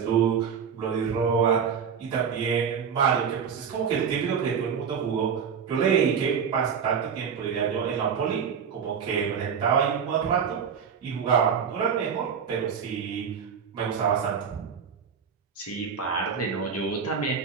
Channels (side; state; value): left; quieter; 6.9 dB